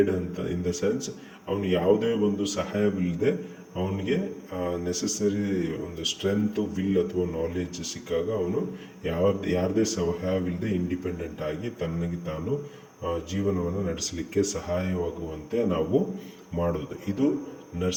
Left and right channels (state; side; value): identical; both; correlation 1.00